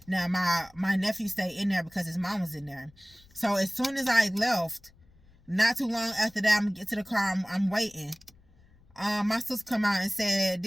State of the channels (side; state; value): left; noise; rumble, 28 dB below the sound